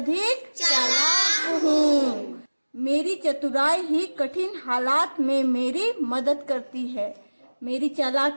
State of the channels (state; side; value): inverted; both; correlation -1.00